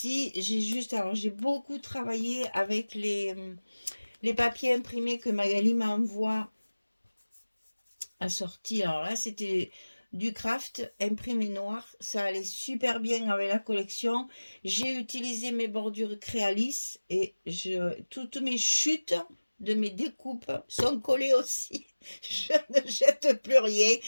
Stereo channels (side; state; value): both; inverted; correlation -1.00